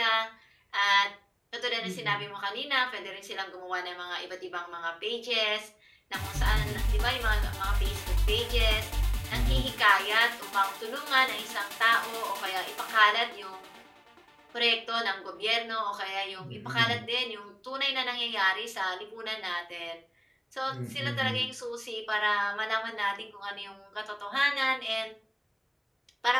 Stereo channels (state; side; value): identical; both; correlation 1.00